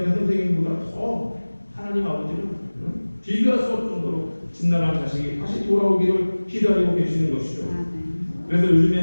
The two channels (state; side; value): inverted; both; correlation -1.00